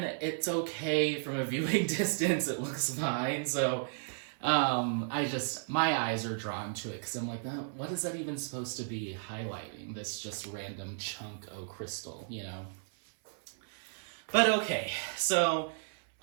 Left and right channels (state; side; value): silent; left; 55 dB below the other